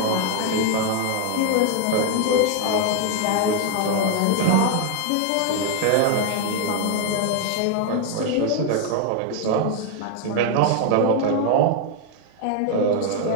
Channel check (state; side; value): different; both; correlation 0.00